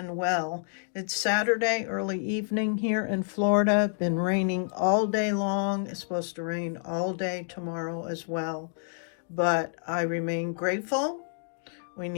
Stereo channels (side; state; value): right; silent; digital silence